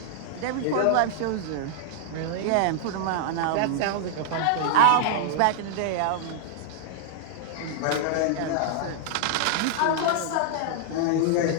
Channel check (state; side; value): different; both; correlation -0.01